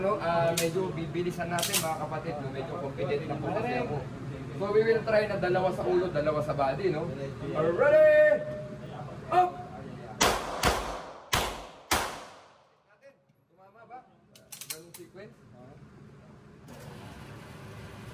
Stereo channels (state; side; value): identical; both; correlation 1.00